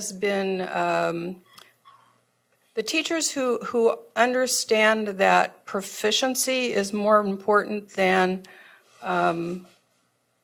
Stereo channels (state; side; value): identical; both; correlation 1.00